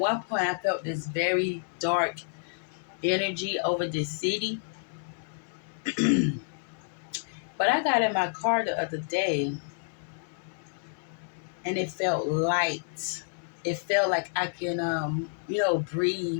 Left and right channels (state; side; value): silent; right; 56 dB below the other